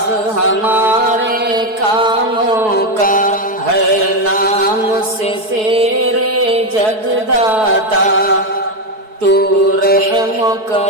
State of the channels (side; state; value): left; late; 4.6 ms